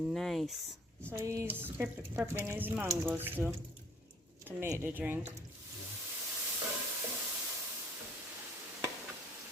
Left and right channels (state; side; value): normal; both; correlation 0.58